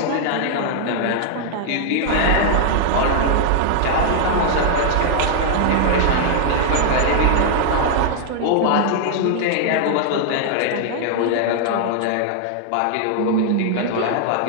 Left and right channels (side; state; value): both; different; correlation -0.01